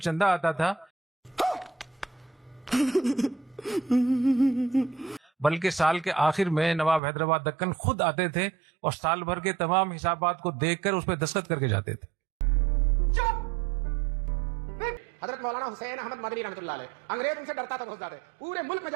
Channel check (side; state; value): left; drops out; at 7.0 s